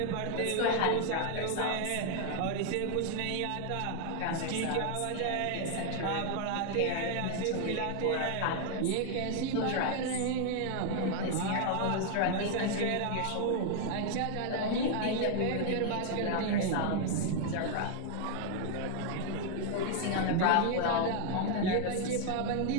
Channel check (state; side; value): different; both; correlation 0.00